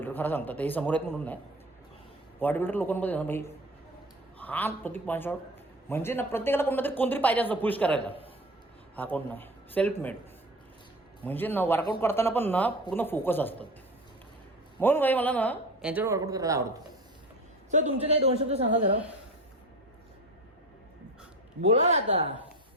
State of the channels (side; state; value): both; normal; correlation 0.34